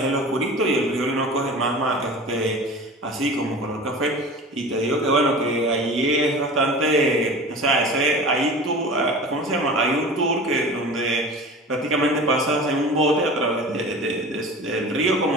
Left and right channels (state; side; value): normal; both; correlation 0.37